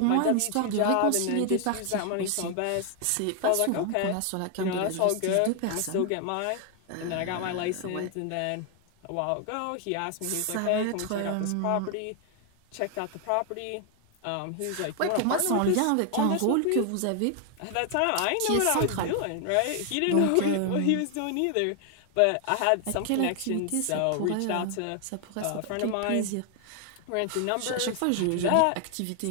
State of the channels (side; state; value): both; different; correlation 0.00